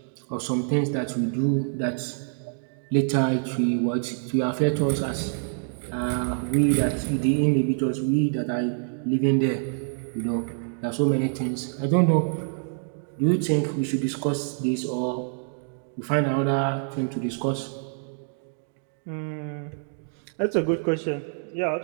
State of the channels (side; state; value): left; silent; digital silence